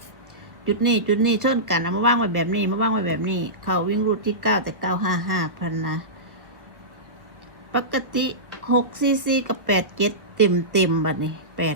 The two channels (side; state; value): left; late; 1.3 ms